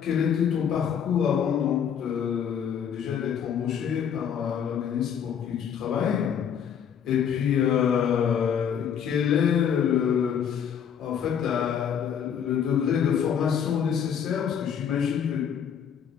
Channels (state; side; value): quieter; right; 8.1 dB